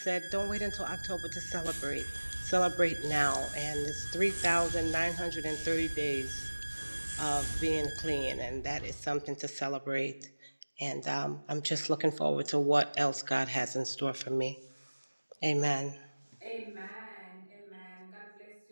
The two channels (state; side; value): inverted; both; correlation -1.00